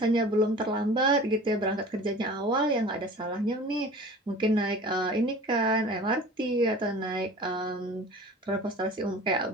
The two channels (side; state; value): both; normal; correlation 0.41